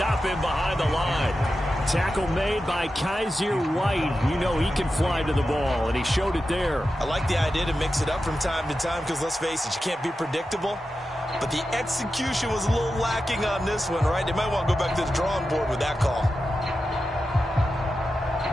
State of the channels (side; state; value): both; normal; correlation 0.91